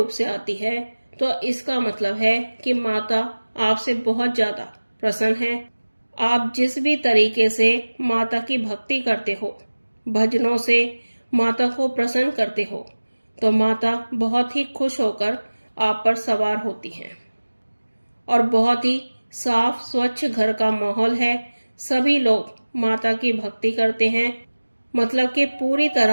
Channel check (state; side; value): inverted; both; correlation -1.00